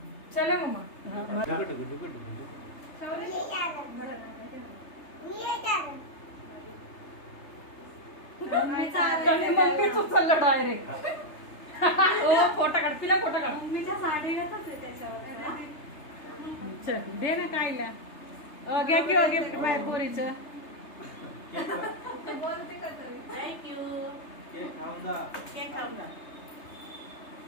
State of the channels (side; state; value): right; late; 3.3 ms